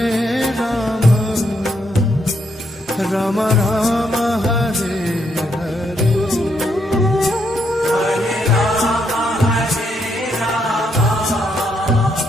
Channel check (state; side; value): normal; both; correlation 0.76